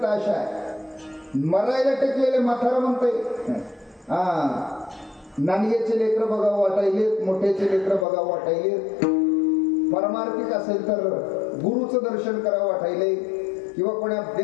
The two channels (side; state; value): right; drops out; at 8.1 s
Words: आशा आहे. मरायला टेकलेले म्हातारा म्हणतंय, नानग्याचे लेकर बघावं वाटायले, मोठ्याचे लेकर बघावं वाटायले, परमार्थिक असेल तर गुरुचं दर्शन करावं वाटायले, किंवा कोणा